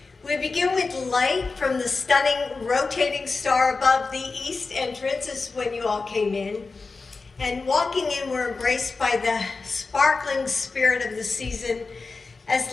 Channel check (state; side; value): quieter; right; 4.1 dB